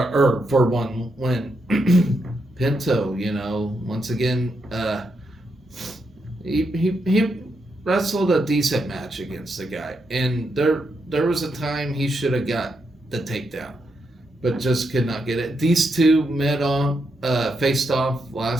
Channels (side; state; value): both; normal; correlation 0.82